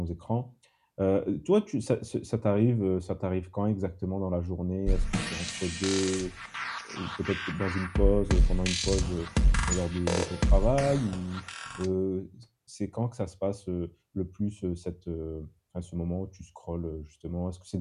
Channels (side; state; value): both; identical; correlation 1.00